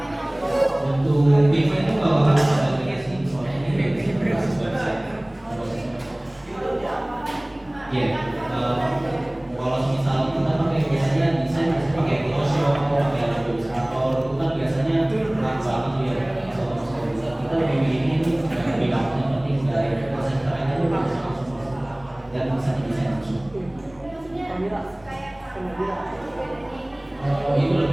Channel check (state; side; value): noise; left; hum, 29 dB below the sound